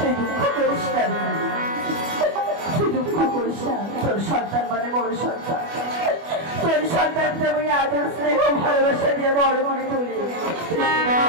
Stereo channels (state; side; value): late; left; 25 ms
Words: দুঃখ করিস না, তুই দুঃখ করিস না। তোর সন্তান মানে বড় সন্তান, তোর সন্তানকে আমি আদর স্নেহ ভালোবাসা দিয়ে বড় করে তুলি।